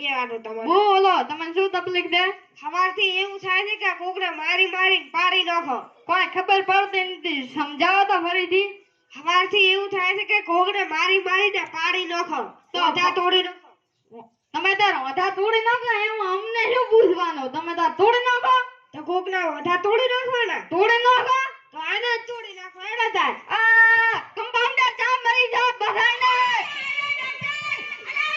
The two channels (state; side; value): identical; both; correlation 1.00